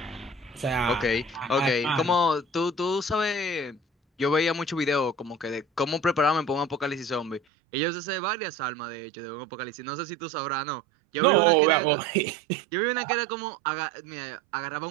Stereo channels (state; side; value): drops out; left; at 7.4 s